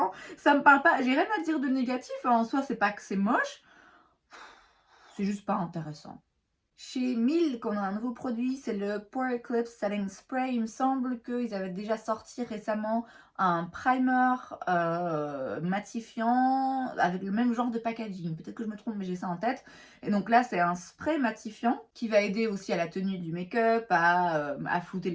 ça me parle pas. J'ai rien à dire de négatif, hein. En soi, c'est pas que c'est moche, c'est juste pas intéressant. Chez Milk, on a un nouveau produit, c'est le Pore Eclipse Setting Spray. Il me semble qu'ils avaient déjà sorti récemment un primer matifiant avec le même genre de packaging. Peut-être que je me trompe, mais j'ai ça en tête. Et donc là, c'est un spray matifiant qui va aider aussi à la tenue du make-up, à flouter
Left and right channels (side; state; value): both; identical; correlation 1.00